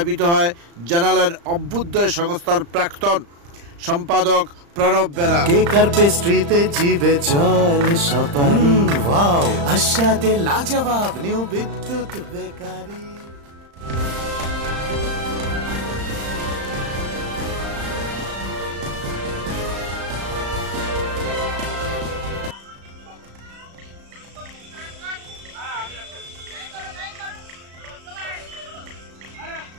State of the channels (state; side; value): late; left; 35 ms